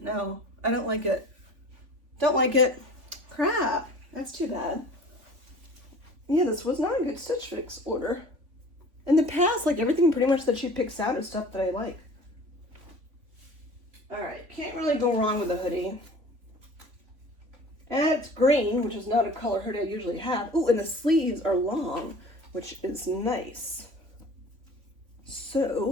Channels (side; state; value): left; late; 3.5 ms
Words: I don't like it. Don't like it. Crap, that's too bad. Yeah, this was not a good Stitch Fix order. In the past, like everything pretty much that she picks out is stuff that I like. All right, can't really go wrong with a hoodie. And it's green, which is not a color hoodie I usually have. Ooh, and the sleeves are long, which is nice.